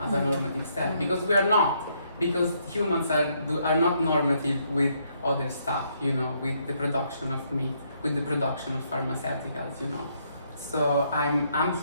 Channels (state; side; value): inverted; both; correlation -0.73